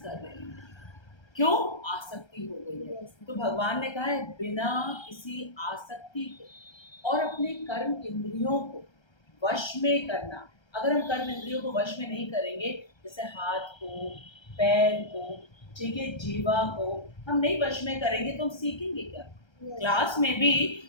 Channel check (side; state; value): right; late; 1.3 ms